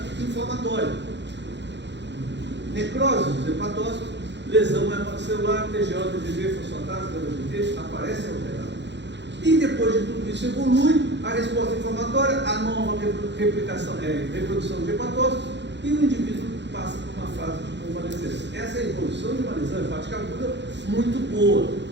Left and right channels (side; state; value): left; late; 0.51 ms